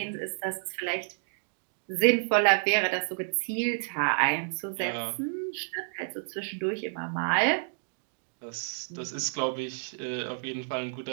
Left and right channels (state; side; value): silent; left; digital silence